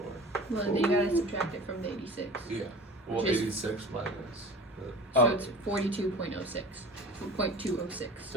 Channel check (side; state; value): both; normal; correlation 0.38